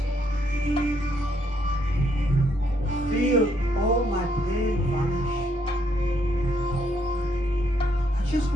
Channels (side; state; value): both; normal; correlation 0.72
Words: Feel all my pain vanish. I just